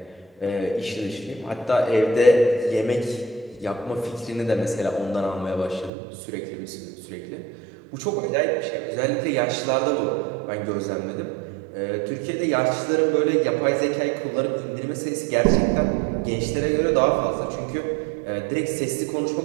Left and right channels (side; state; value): left; drops out; at 5.9 s